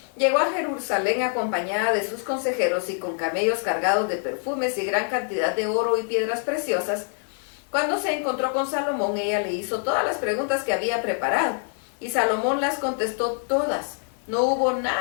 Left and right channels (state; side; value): silent; right; 61 dB below the other